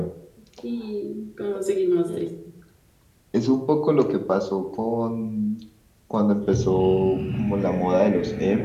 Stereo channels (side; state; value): both; identical; correlation 1.00